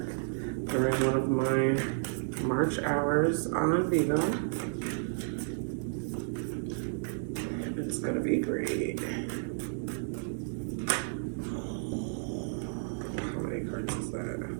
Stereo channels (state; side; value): silent; left; digital silence